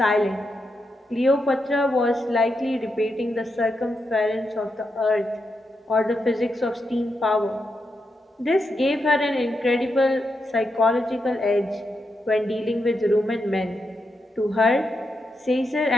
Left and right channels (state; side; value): normal; both; correlation 0.85